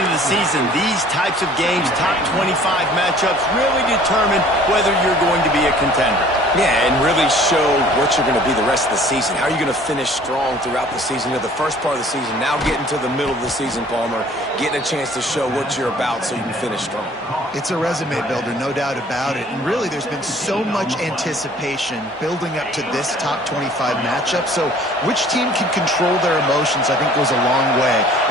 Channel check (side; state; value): both; normal; correlation 0.52